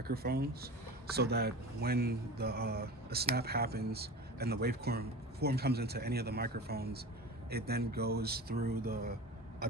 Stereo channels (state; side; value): normal; both; correlation 0.33